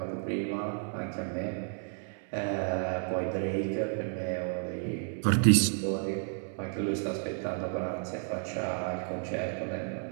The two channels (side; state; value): left; silent; 56 dB below the other